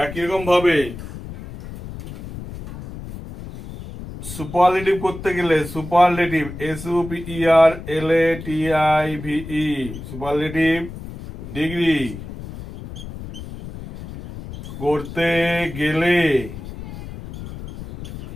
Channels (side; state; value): left; noise; rumble, 12 dB below the sound